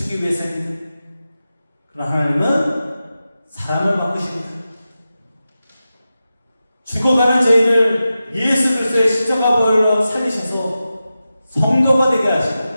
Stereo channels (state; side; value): inverted; both; correlation -0.93